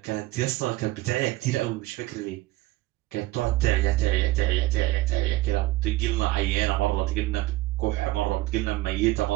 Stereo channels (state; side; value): quieter; left; 18.0 dB